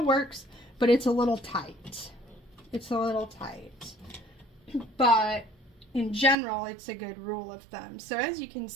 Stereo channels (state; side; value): drops out; left; at 6.4 s